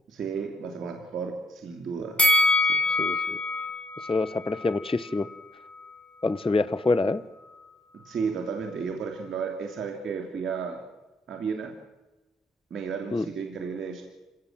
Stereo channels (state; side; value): normal; both; correlation 0.71